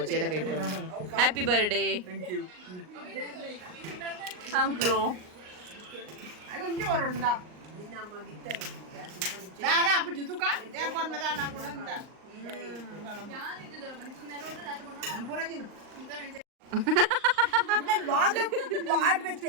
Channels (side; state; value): left; late; 38 ms